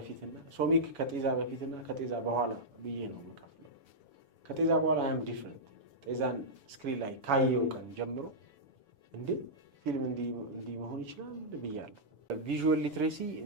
ሶሚክ ከጤዛ በፊትና ከጤዛ በኋላ ብዬ ነው የምከፍለው። ከጤዛ በኋላ አም ዲፍረንት። ጤዛን ስክሪን ላይ ካየው ቀን ጀምሮ እንዴ ፊልም እንዲህ መሆን ይችላል ብያለሁ። ቪዥዋል ሊትሬሲ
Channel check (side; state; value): left; late; 7.1 ms